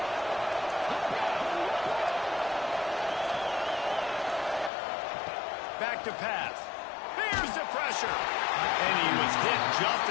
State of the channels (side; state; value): right; drops out; at 4.7 s